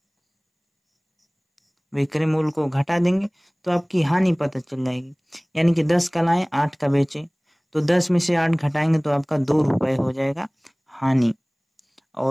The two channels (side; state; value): both; identical; correlation 1.00